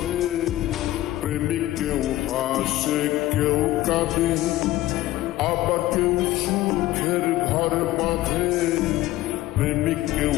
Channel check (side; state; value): right; quieter; 15.8 dB